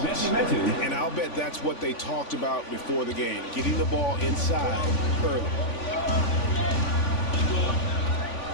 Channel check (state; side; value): late; right; 3.5 ms